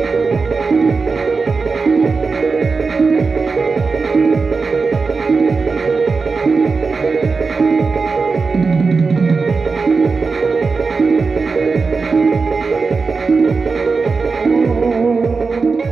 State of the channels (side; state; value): left; quieter; 4.5 dB